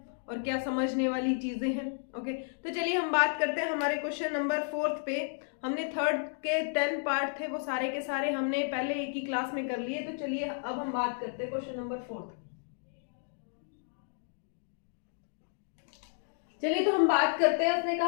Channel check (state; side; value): silent; right; digital silence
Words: और क्या समझने वाली चीजें हैं। ओके, तो चलिए हम बात करते हैं हमारे क्वेश्चन नंबर 4 पे। हमने थर्ड के 10 पार्ट थे, वो सारे के सारे हमने पहले एक ही क्लास में कर लिए। तो चलिए अब हम बात करते हैं क्वेश्चन नंबर 4। चलिए तो हम बात करते हैं। उसने